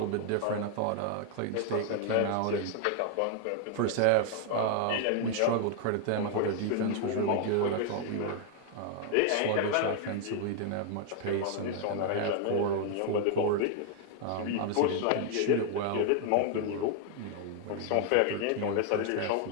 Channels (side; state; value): both; different; correlation 0.00